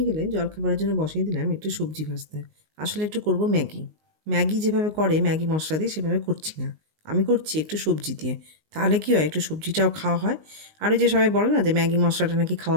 গেলে জলখাবারের জন্য বসিয়ে দিলাম একটু সবজি ভাজতে। আসলে একটু করব ম্যাগি। ম্যাগি যেভাবে করে ম্যাগি মশলা দিয়ে সেভাবে করছি না, আমি করছি একটু সবজি দিয়ে। তাহলে কী হয়, একটু সবজিটাও খাওয়া হয়। আর ওই যে সবাই বলে না যে ম্যাগি মশলাটা নাকি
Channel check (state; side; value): late; left; 19 ms